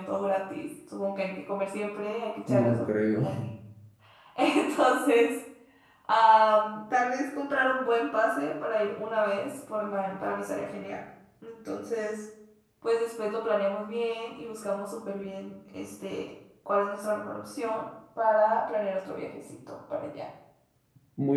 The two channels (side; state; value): both; identical; correlation 1.00